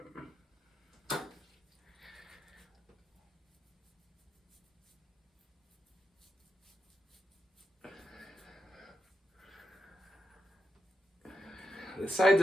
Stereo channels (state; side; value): normal; both; correlation 0.86